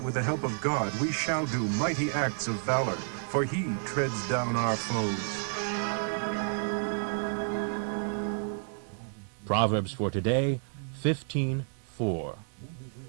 with the help of God, we shall do mighty acts of valor, for he treads down our foes. Proverbs for today, 15:4.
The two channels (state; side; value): silent; left; 57 dB below the other